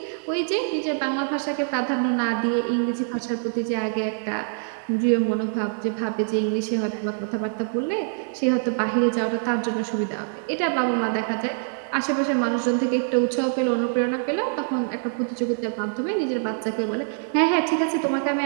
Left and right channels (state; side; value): silent; left; digital silence